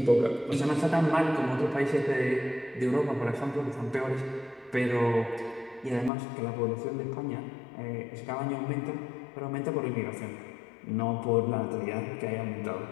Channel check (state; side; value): drops out; right; at 6.1 s